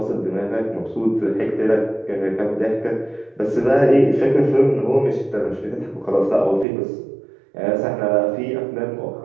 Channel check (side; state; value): left; drops out; at 6.7 s